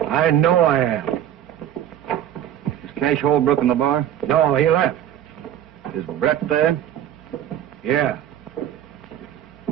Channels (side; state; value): left; quieter; 11.0 dB